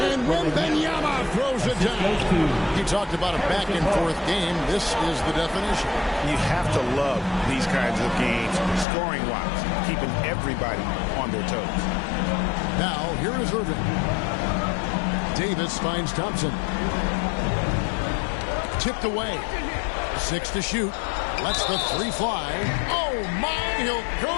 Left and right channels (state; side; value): drops out; right; at 8.8 s